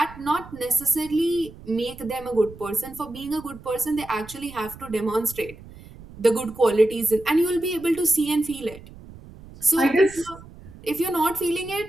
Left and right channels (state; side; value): noise; right; rumble, 18 dB below the sound